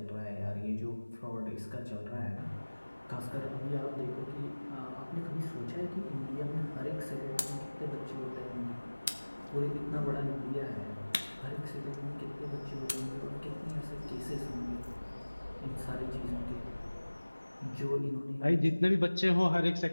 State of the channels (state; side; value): inverted; both; correlation -1.00